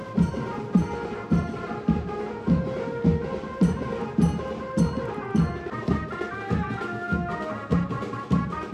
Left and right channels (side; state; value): both; identical; correlation 1.00